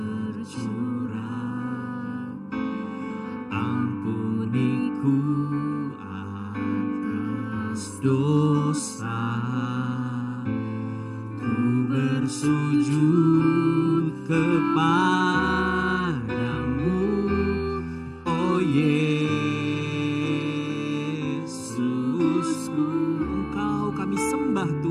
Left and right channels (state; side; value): identical; both; correlation 1.00